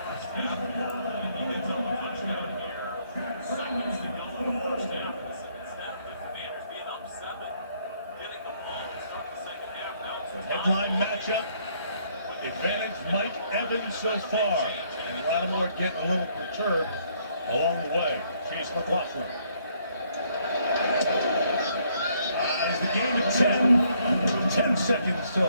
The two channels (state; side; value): inverted; both; correlation -0.68